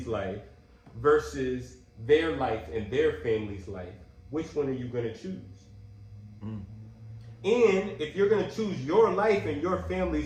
life versus their life and their family's life, which one are you gonna choose? And if you're gonna choose your life and your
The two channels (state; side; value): identical; both; correlation 1.00